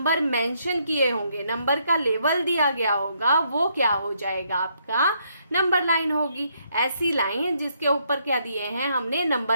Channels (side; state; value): both; inverted; correlation -0.73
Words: मेंशन किए होंगे, नंबर का लेवल दिया गया होगा, वो क्या हो जाएगा आपका, नंबर लाइन होगी। ऐसी लाइन जिसके ऊपर क्या दिए हैं, हमने